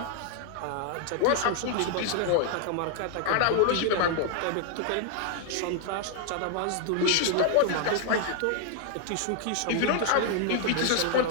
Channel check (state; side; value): different; both; correlation 0.00